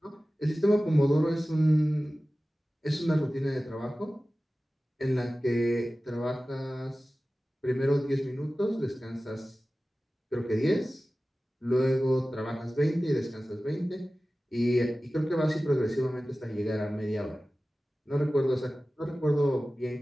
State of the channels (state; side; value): normal; both; correlation 0.96